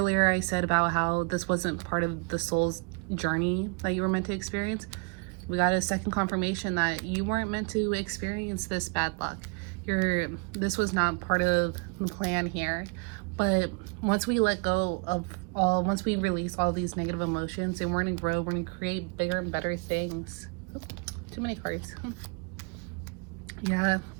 I said about how this wasn't part of the soul's journey that you were meant to experience. We got a second confirmation that you weren't meant to experience this bad luck. This was not part of the plan here. But once we let go of once we release all these negative emotions, and we're gonna grow, we're gonna create bigger and better things. Oh, too many cards. Yeah.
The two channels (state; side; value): quieter; left; 34.6 dB